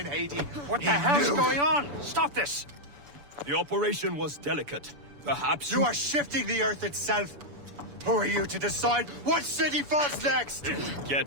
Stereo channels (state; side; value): late; left; 7.0 ms